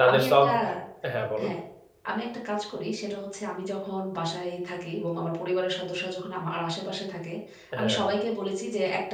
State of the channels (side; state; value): both; identical; correlation 1.00